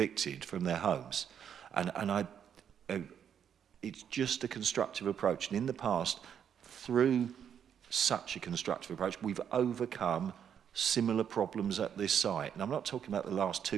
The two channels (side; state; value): left; quieter; 8.5 dB